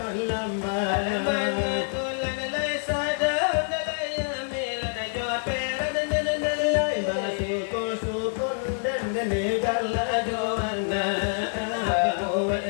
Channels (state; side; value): silent; right; 61 dB below the other